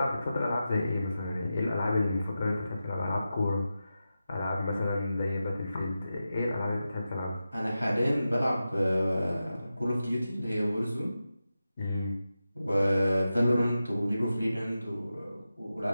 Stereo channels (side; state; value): both; inverted; correlation -0.92